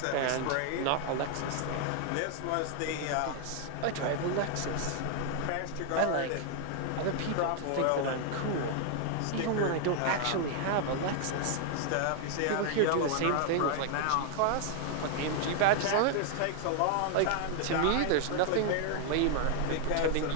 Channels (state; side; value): different; both; correlation 0.00